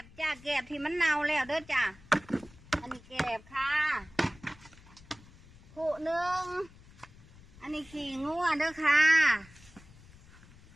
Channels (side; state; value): left; noise; rumble, 23 dB below the sound